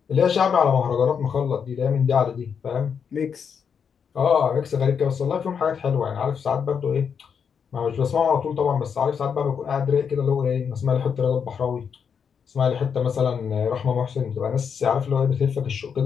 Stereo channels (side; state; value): right; quieter; 6.9 dB